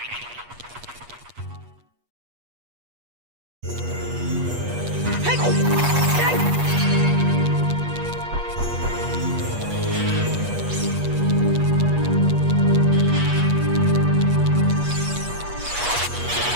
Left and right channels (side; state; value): left; late; 8.3 ms